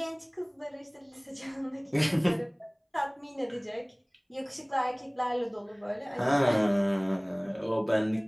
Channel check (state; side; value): identical; both; correlation 1.00